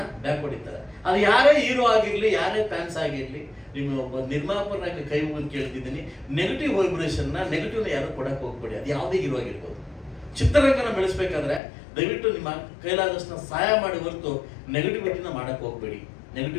ಹೊಡಿತಾರೆ. ಅದು ಯಾರೇ ಹೀರೋ ಆಗಿರ್ಲಿ, ಯಾರೇ ಫ್ಯಾನ್ಸ್ ಆಗಿರ್ಲಿ, ನಿಮ್ಮ ಒಬ್ಬ ನಿರ್ಮಾಪಕನಾಗಿ ಕೈ ಮುಗಿದು ಕೇಳ್ತಿದ್ದೀನಿ, ನೆಗೆಟಿವ್ ನೆಗೆಟಿವ್ನ ಯಾರು ಕೊಡಕ್ಕೆ ಹೋಗ್ಬೇಡಿ. ಅದು ಯಾವುದೇ ಹೀರೋ ಆಗಿರ್ಬೋದು. ಚಿತ್ರರಂಗನ ಬೆಳೆಸ್ಬೇಕಾದ್ರೆ ದಯವಿಟ್ಟು ನಿಮ್ಮ ಕೈಲಾದಷ್ಟು ಸಹಾಯ ಮಾಡಿ ಹೊರತು ನೆಗೆಟಿವಿಟಿನ ಮಾಡಕ್ಕೆ ಹೋಗ್ಬೇಡಿ.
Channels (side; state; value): right; drops out; at 11.6 s